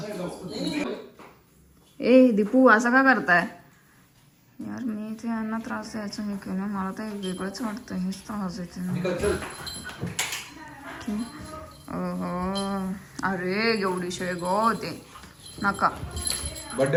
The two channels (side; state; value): both; identical; correlation 1.00